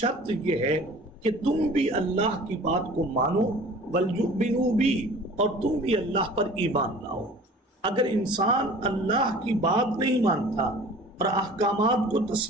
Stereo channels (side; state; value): both; normal; correlation 0.45